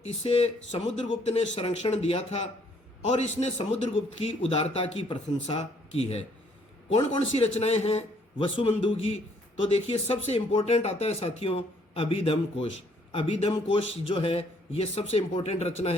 इसे समुद्रगुप्त ने संरक्षण दिया था और इसने समुद्रगुप्त की उदारता की प्रशंसा की है। कौन कौन सी रचनाएं हैं वसुबंधु की, तो देखिए सबसे इंपॉर्टेंट आता है साथियों अभिधम कोश। अभिधम कोश जो है ये सबसे इंपॉर्टेंट रचना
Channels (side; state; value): both; normal; correlation 0.65